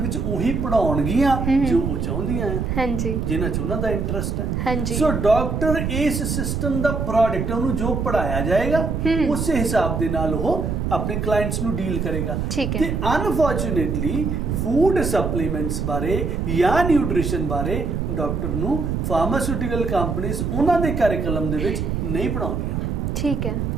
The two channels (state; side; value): noise; right; rumble, 1 dB below the sound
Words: ਉਹੀ ਪੜ੍ਹਾਉਣਗੀਆਂ ਜੋ ਉਹ ਚਾਹੁੰਦੀਆਂ ਆ। ਹਾਂਜੀ। ਜਿਨ੍ਹਾਂ 'ਚ ਉਹਨਾਂ ਦਾ ਇੰਟਰਸਟ ਹੈ। ਹਾਂਜੀ। ਸੋ ਡਾਕਟਰ ਇਸ ਸਿਸਟਮ ਦਾ ਪ੍ਰੋਡਕਟ, ਉਹਨੂੰ ਜੋ ਪੜ੍ਹਾਇਆ ਜਾਏਗਾ ਉਸੇ ਹਿਸਾਬ ਦੇ ਨਾਲ ਉਹ ਆਪਣੇ ਕਲਾਇੰਟਸ ਨੂੰ ਡੀਲ ਕਰੇਗਾ। ਤੇ ਅਨਫੋਰਚੂਨੇਟਲੀ ਫੂਡ ਸਪਲੀਮੈਂਟਸ ਬਾਰੇ ਜਾਂ ਨਿਊਟ੍ਰੀਸ਼ਨ ਬਾਰੇ ਡਾਕਟਰ ਨੂੰ ਫਾਰਮਾਸਿਊਟੀਕਲ ਕੰਪਨੀਜ਼ ਉਹਨਾਂ ਦੇ ਕਰਿਕੂਲਮ ਦੇ ਵਿੱਚ ਨਹੀਂ ਪੜ੍ਹਾਉਂਦੀਆਂ। ਠੀਕ ਹੈ।